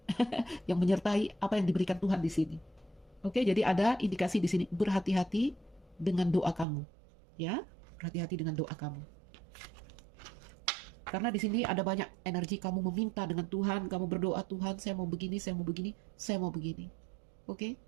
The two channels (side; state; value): left; drops out; at 6.7 s